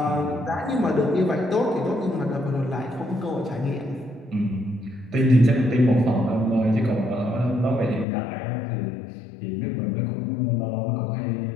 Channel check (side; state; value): right; drops out; at 8.1 s